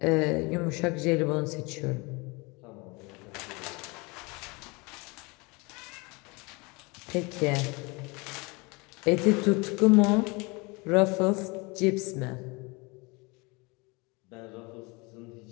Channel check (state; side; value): quieter; right; 27.1 dB